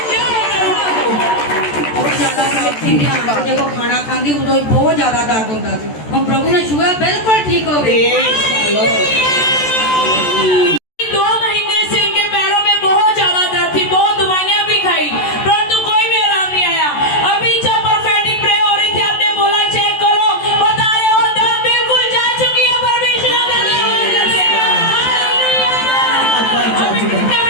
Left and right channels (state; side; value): late; right; 14 ms